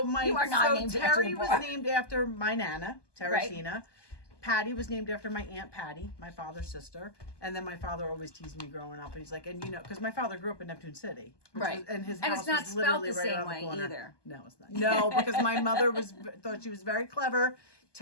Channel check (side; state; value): right; late; 1.2 ms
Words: You are not named after Terry the was bar. named after my Nana, Teresina. Patty was named after my Aunt Patty, my father's sister. And then my father always teased me growing up. And he's like, and you know, because my father grew up in Neptune City. which Right. was- and his And house it's not was spelled literally the right same around way the corner. either. No, it's not. No, because my mother thought she was very clever.